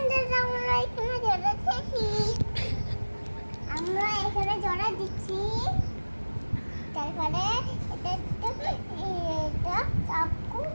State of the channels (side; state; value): both; inverted; correlation -1.00